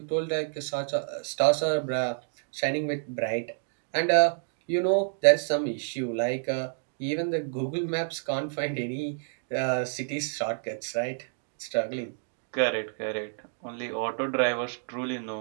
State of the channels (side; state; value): left; silent; digital silence